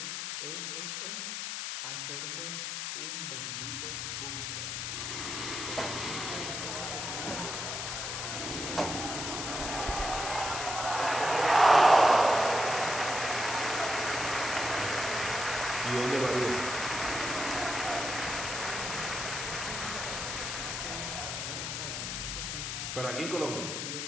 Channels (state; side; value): noise; left; hiss, 3 dB below the sound